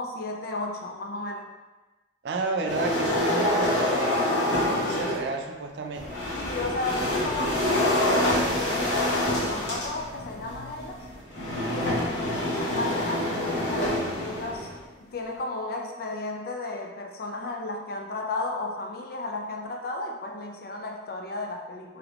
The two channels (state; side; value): normal; both; correlation 0.09